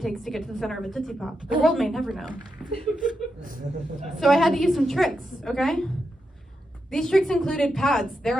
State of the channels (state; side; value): normal; both; correlation 0.86